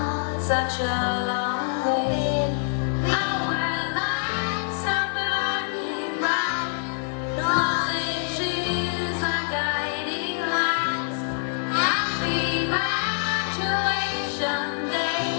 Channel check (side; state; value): right; silent; 61 dB below the other